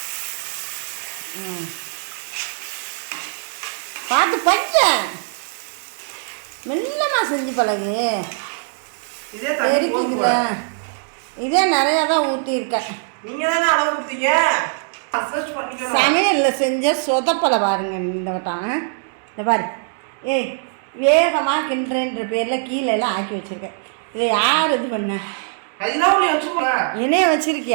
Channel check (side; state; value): left; silent; digital silence